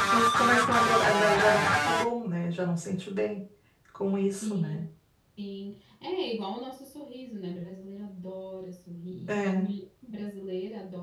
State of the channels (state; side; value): identical; both; correlation 1.00